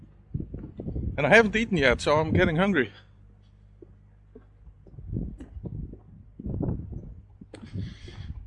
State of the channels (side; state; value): both; identical; correlation 1.00